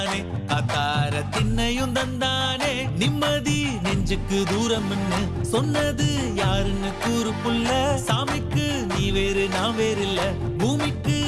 அத்தார திண்ணையும் தந்தானே நிம்மதி நெஞ்சுக்கு தூரம்னு சொன்னது யாருன்னு கூறு புள்ள சாமிக்கு நீ வேறு நான் வேறு இல்ல பூமிக்கு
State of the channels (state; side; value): identical; both; correlation 1.00